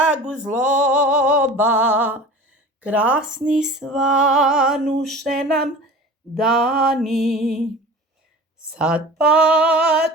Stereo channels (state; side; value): normal; both; correlation 0.39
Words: zloba. Krasni svanuše nam dani, sad